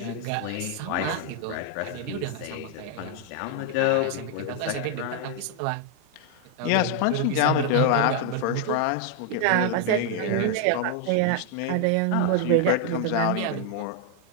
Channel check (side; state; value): both; different; correlation 0.00